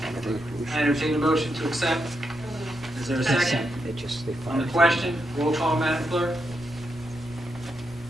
I entertain a motion to accept. Is there a second? On the question, roll call, Madam Clerk.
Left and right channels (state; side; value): normal; both; correlation 0.83